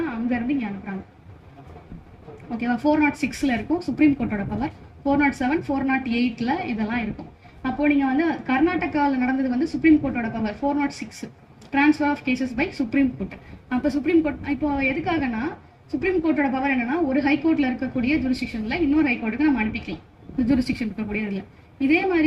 அங்க இருந்து இங்க அனுப்புறாங்க. ஓகேவா? 406ல இருக்கும் சுப்ரீம் கோர்ட்டோட பவர், 407 408ல இதெல்லாம் இருக்கும். அப்போ நீங்க வந்து கர்நாடகாவில் நடந்தது வந்து சுப்ரீம் கோர்ட்டோட power 406 transfer of cases by supreme court. அப்போ சுப்ரீம் கோர்ட் இப்போ எதுக்காகனா சுப்ரீம் கோர்ட்டோட பவர் என்னன்னா ஒரு ஹைகோர்ட்ல இருக்கக்கூடிய ஜூரிஸ்டிக்ஷன்ல இன்னொரு ஹைகோர்ட்டுக்கு நம்ம அனுப்பிக்கலாம், ஜூரிஸ்டிக்ஷன் இருக்கக்கூடிய இதுல. இதே மாதிரி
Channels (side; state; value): both; identical; correlation 1.00